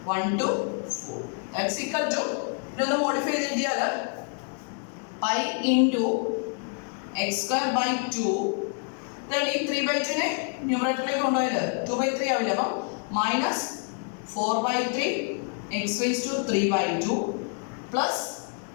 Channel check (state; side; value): quieter; right; 39.1 dB